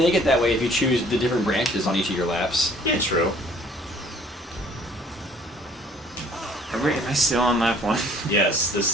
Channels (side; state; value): both; normal; correlation 0.56